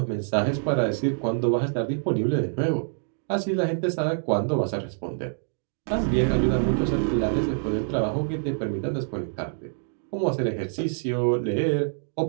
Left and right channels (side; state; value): left; silent; digital silence